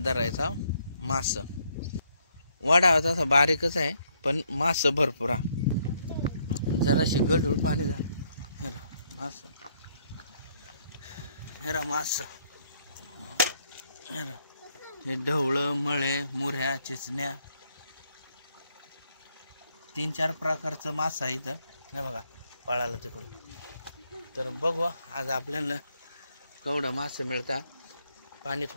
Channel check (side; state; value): both; inverted; correlation -0.72